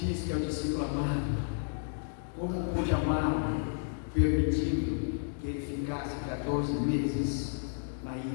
que é o discípulo amado. Como pôde amar, permitindo que ele ficasse 14 meses na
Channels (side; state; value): right; silent; 56 dB below the other